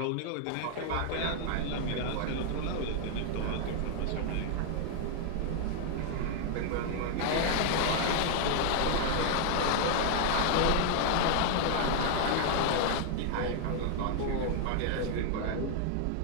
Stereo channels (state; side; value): different; both; correlation 0.00